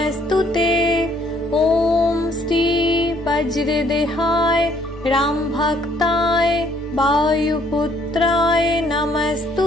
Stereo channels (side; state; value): both; normal; correlation 0.64